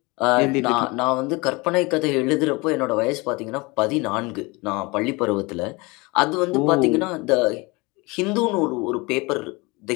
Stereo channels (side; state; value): right; quieter; 25.3 dB